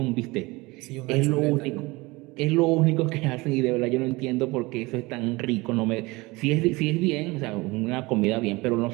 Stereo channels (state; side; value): quieter; left; 23.0 dB